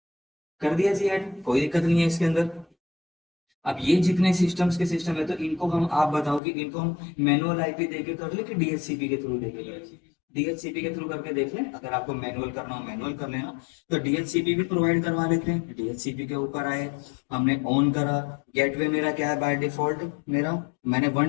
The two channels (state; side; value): drops out; right; at 6.4 s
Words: कर दिया जी ऐड, कोई दिक्कत नहीं है इसके अंदर। अब ये जितने सिस्टम्स के सिस्टम है, तो इनको हम, आप बताओ कि इनको हम मैनुअल आईपी देके कर ले कि डीएचसीपी के थ्रू देके कर। डीएचसीपी के थ्रू करके देख लें, अगर आपको मैनुअल करना हो मैनुअल कर लेना। तो डीएचसीपी भी प्रोवाइड करवा लेते हैं। डीएचसीपी के ऊपर आए, हमने ऑन करा। गेटवे मेरा क्या है बाय डिफॉल्ट, मेरा मैंने